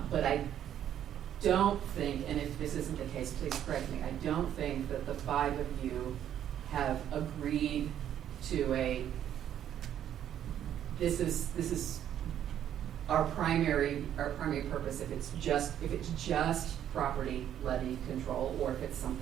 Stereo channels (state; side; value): quieter; left; 10.4 dB